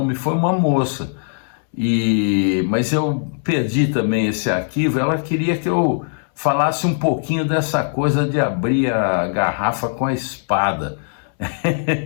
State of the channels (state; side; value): silent; right; 66 dB below the other